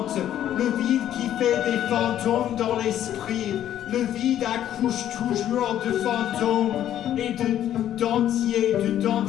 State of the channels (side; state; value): right; quieter; 11.3 dB